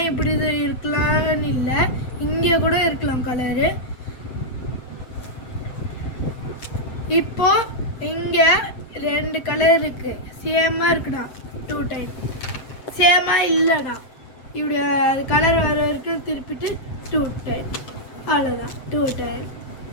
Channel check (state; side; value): late; right; 7.7 ms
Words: இப்படி இது இருக்கலாம்னு இல்லை, இங்கே கூட இருக்கலாம் கலரு. இப்போ இங்கே 2 கலர் இருக்குது, சேமாக இருக்குடா. 2 டைம் சேமாக இல்லைடா. இப்படி அது கலர் வர வரைக்கும் திருப்பிட்டு 2 டைம், அவ்வளோதான். 2 டைம்.